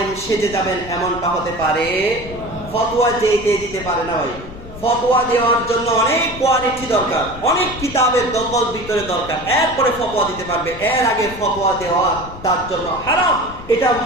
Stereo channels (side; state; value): left; noise; rumble, 14 dB below the sound